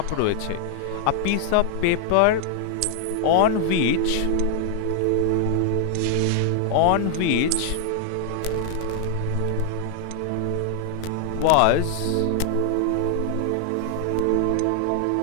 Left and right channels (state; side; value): different; both; correlation 0.00